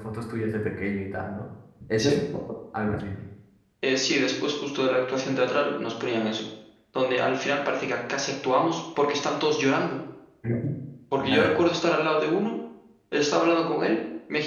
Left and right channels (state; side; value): identical; both; correlation 1.00